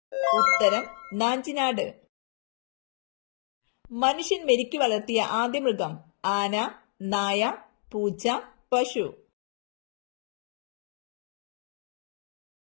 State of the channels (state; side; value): silent; right; digital silence